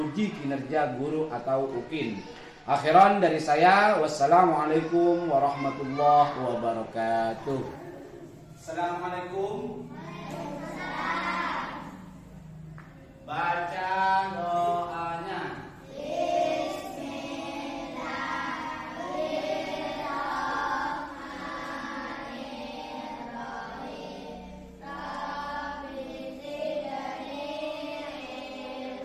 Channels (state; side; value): identical; both; correlation 1.00